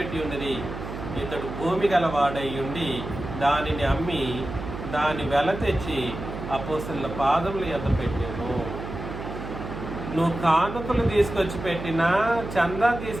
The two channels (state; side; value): noise; right; hum, 9 dB below the sound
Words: ఉన్నది. ఇతడు భూమి గలవాడై ఉండి దానిని అమ్మి దాని వెల తెచ్చి అపోస్తలుల పాదముల యొద్ద పెట్టాను. నువ్వు కానుకలు తీసుకొచ్చి పెట్టినా చందా